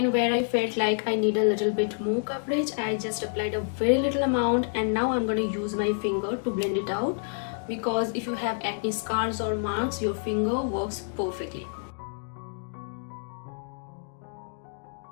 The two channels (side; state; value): right; silent; digital silence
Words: where I felt like I need a little bit more coverage, I just applied a very little amount, and now I'm going to use my finger to blend it out, because if you have acne scars or marks, your finger works perfectly.